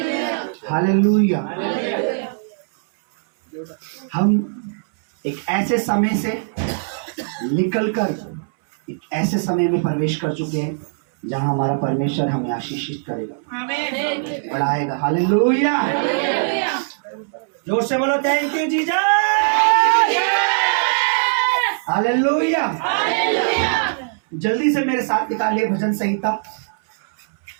hallelujah. हम एक ऐसे समय से निकलकर एक ऐसे समय में प्रवेश कर चुके हैं जहां हमारा परमेश्वर हमें आशीषित करेगा, बढ़ाएगा। हालेलुया, जोर से बोलो थैंक यू जीसस। हालेलुया। जल्दी से मेरे साथ निकालिए भजन संहिता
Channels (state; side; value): silent; left; 65 dB below the other